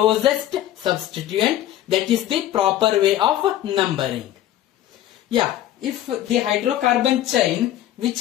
substituent, that is the proper way of numbering. Yeah, if the hydrocarbon chain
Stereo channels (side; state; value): right; quieter; 12.7 dB